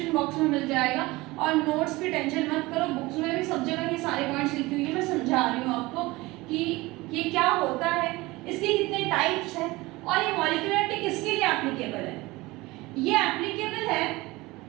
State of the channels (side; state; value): left; quieter; 21.1 dB